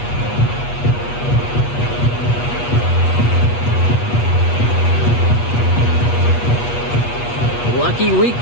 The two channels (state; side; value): late; right; 8.3 ms